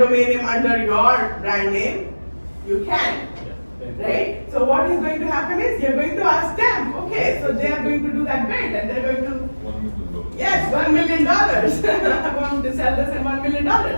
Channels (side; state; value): both; inverted; correlation -1.00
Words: name under your brand name, you can. Right? So what is going to happen is you're going to ask them, okay, so they are going to do that bid and they're going to, yes, $1 million. I'm going to sell this at $1 million.